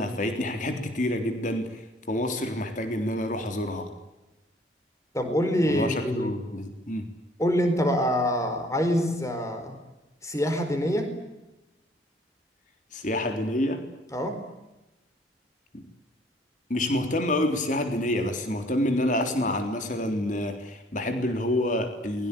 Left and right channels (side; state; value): both; normal; correlation 0.58